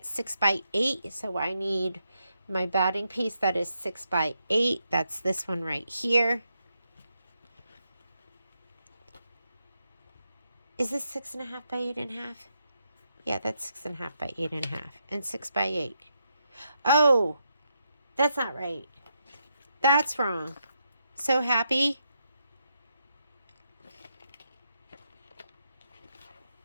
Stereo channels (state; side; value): inverted; both; correlation -0.82